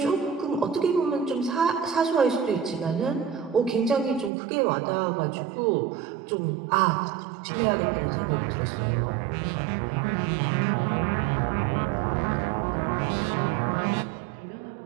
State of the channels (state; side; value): drops out; left; at 4.3 s